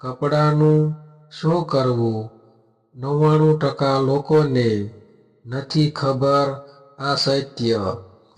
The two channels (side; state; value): both; identical; correlation 1.00